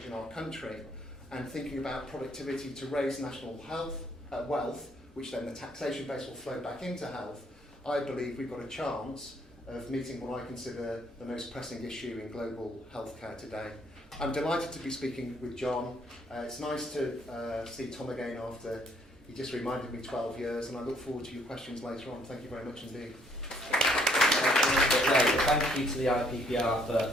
our country and thinking about productivity to raise national wealth, which then the taxation base will flow back into health, I believe we've got a chance of meeting what I consider the most pressing issue in global healthcare today. I'm delighted to be speaking with Jon. It's nice to see Tom again after he just reminded me 12 years, and I look forward to your questions later on. Thank you very much indeed. Thank you to the IPPR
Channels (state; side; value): normal; both; correlation 0.66